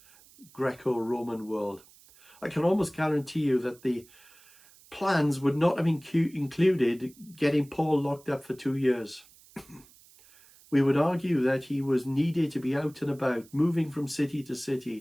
Greco-Roman world, I can almost guarantee you that the plans would not have included getting Paul locked up for 2 years. We would argue that he was needed to be out and about, moving from city to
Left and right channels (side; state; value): right; noise; hiss, 26 dB below the sound